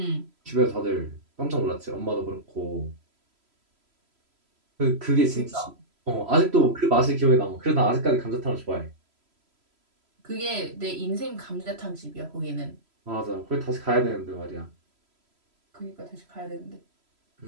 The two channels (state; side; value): late; left; 3.0 ms